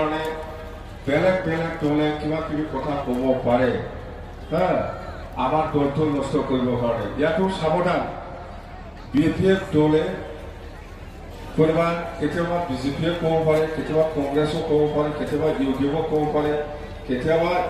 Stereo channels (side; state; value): both; identical; correlation 1.00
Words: বেলেগ দলে কিবা কিবি কথা ক'ব পাৰে আমাৰ দলটো নষ্ট কৰিবৰ কাৰণে ইয়াতো সাৱধান BJP দলে কেতিয়াবা BJP ক'ব পাৰে কেতিয়াবা কংগ্ৰেছো ক'ব পাৰে কেতিয়াবা UDF ক'ব পাৰে কেতিয়াবা